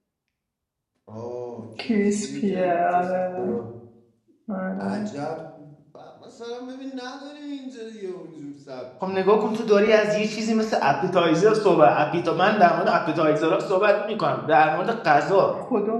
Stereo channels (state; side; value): identical; both; correlation 1.00